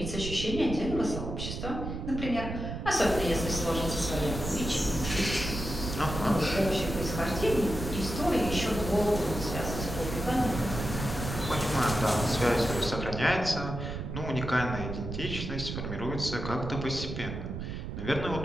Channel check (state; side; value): noise; right; rumble, 6 dB below the sound